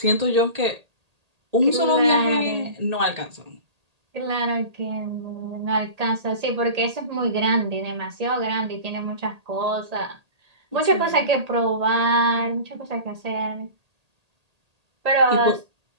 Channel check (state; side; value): late; left; 1.8 ms